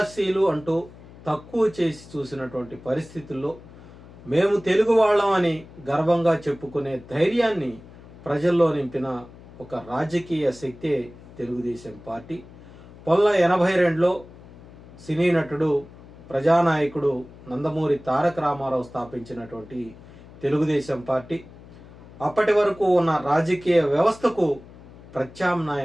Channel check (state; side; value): noise; left; hum, 20 dB below the sound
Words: అంటూ తక్కువ చేసి చూసినటువంటి పరిస్థితుల్లో మేము తెలుగు వాళ్ళం అని గర్వంగా చెప్పుకునే ధైర్యాన్ని ప్రజల్లో నింపిన ఒక రాజకీయ శక్తే తెలుగుదేశం పార్టీ. 1982లో సినీ నటుడు ప్రజానాయకుడు నందమూరి తారక రామారావు స్థాపించినటువంటి తెలుగుదేశం పార్టీ అప్పటి వరకు ఉన్న రాజకీయ వ్యవస్థకు